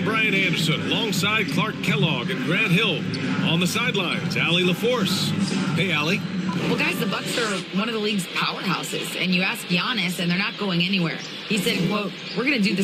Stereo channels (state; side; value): identical; both; correlation 1.00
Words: Brian Anderson, alongside Clark Kellogg and Grant Hill. On the sidelines, Allie LaForce. Hey, Allie. Well, guys, the Bucks are one of the league's powerhouses, and you ask Giannis, and they're not going anywhere. He said, quote, "We're going to do